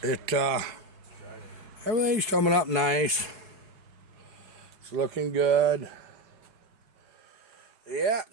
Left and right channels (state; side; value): late; left; 4.7 ms